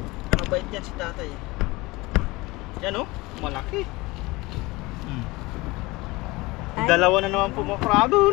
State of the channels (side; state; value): right; quieter; 22.2 dB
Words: Mabait yan si tatay. Yan oh, malaki. Ay. Dalawa na naman po mga